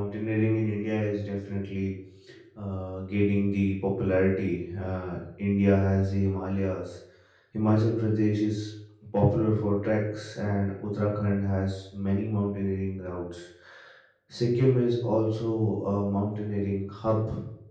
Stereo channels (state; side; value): identical; both; correlation 1.00